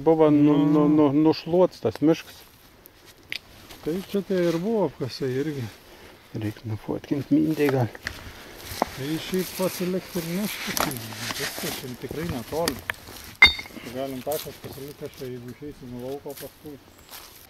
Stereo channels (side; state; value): both; identical; correlation 1.00